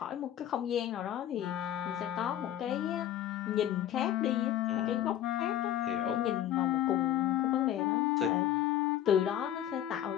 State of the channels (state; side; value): quieter; right; 11.5 dB